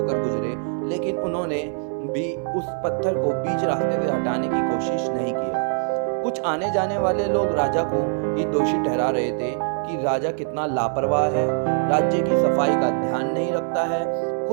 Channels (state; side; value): silent; left; 63 dB below the other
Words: गुजरे, लेकिन उन्होंने भी उस पत्थर को बीच रास्ते से हटाने की कोशिश नहीं किया। कुछ आने जाने वाले लोग राजा को ही दोषी ठहरा रहे थे कि राजा कितना लापरवाह है, राज्य की सफाई का ध्यान नहीं रखता है।